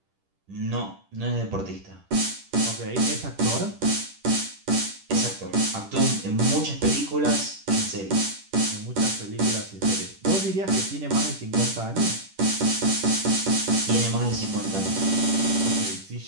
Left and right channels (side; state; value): left; late; 10 ms